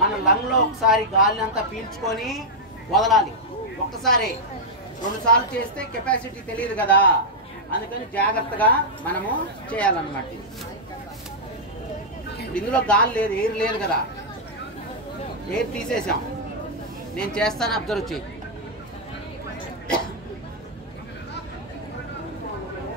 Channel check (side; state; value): both; normal; correlation -0.06